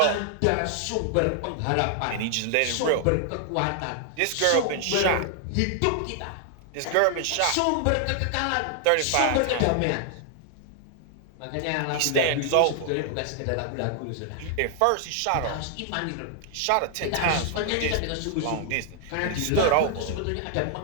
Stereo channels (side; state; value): both; different; correlation 0.00